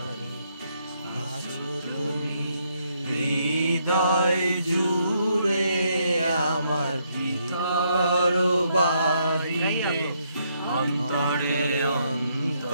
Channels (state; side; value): inverted; both; correlation -0.74